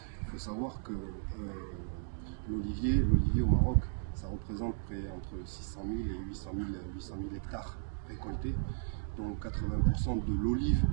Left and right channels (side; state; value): left; silent; digital silence